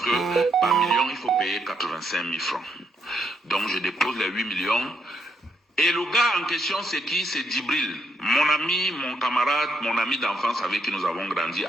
que par million il faut payer 85 000 francs. Donc je dépose les 8 millions. Et le gars en question, c'est qui? C'est Djibril, mon ami, mon camarade, mon ami d'enfance avec qui nous avons grandi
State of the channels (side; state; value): both; normal; correlation 0.76